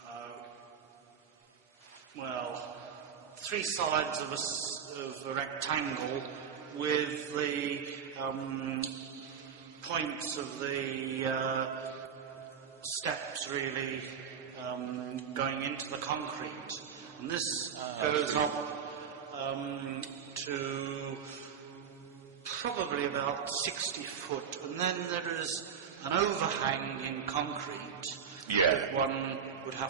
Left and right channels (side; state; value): left; quieter; 7.3 dB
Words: 3 sides of a rectangle with the points of the steps really going into the concrete. And this goes up to probably about 60 foot, and then there is an overhang in concrete that one would